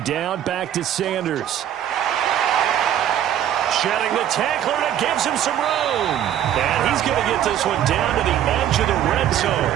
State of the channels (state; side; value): quieter; left; 10.8 dB